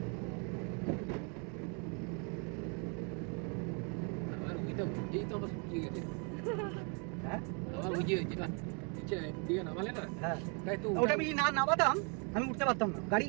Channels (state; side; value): quieter; left; 34.9 dB